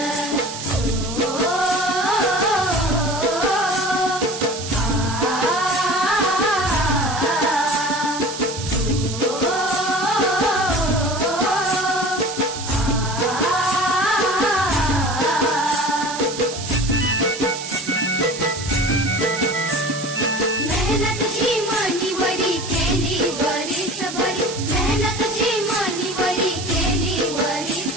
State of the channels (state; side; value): noise; right; hiss, 9 dB below the sound